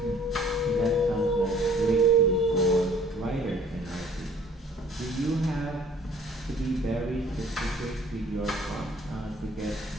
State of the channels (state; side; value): normal; both; correlation 0.54